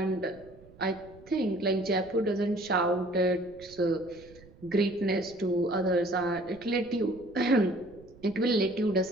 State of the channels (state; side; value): noise; right; rumble, 23 dB below the sound